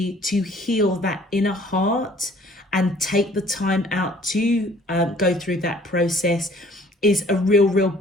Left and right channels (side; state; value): both; normal; correlation 0.55